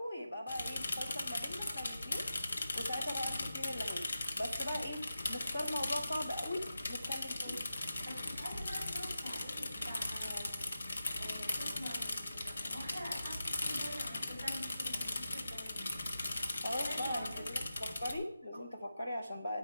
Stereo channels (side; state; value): both; inverted; correlation -0.91